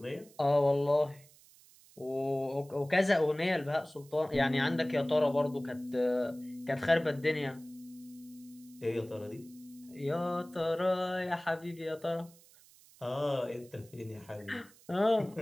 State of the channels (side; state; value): right; noise; hiss, 25 dB below the sound